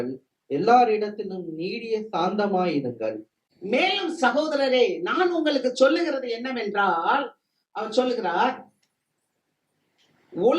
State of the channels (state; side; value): identical; both; correlation 1.00